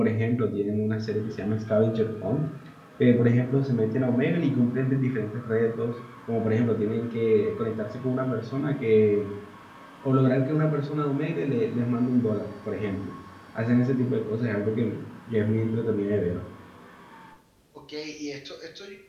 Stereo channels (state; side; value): identical; both; correlation 1.00